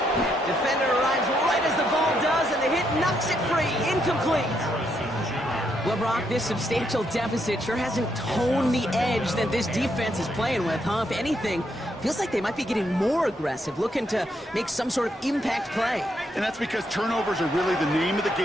Defender arrives right as the ball does, and the hit knocks it free. Incomplete. Well, Brock, this substantial deficit sure hasn't toned the edge that this defense is playing with, huh? If anything, feels like they might be getting more aggressive, looking to make some sort of impact play. And that's because turnovers are really the name of the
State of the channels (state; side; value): normal; both; correlation 0.77